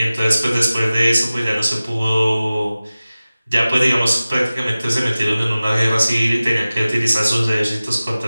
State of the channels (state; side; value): inverted; both; correlation -0.97